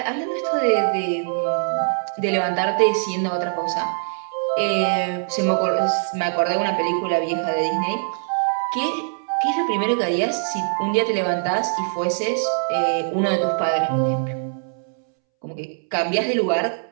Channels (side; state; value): left; silent; 64 dB below the other